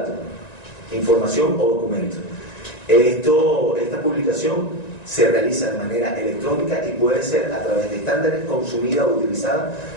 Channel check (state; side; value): late; right; 1.9 ms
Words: información o documento. Esta publicación se realiza de manera electrónica y puede ser a través de estándares consumida o utilizada